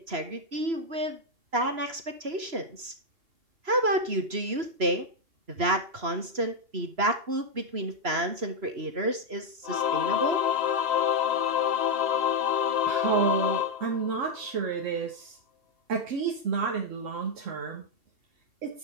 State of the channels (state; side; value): late; left; 3.0 ms